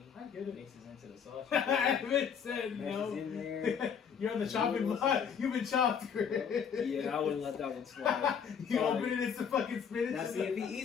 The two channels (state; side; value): quieter; right; 7.2 dB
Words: I get it. Mixes into the sauce. I haven't said Meshes no. in there. You're on the chopping block. You've been chopped. Yeah, I wouldn't let that one slide. You Sorry. open it, it's the fucking spinach. Now, see, if he